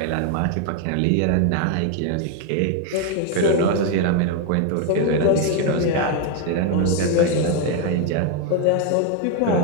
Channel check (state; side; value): different; both; correlation 0.01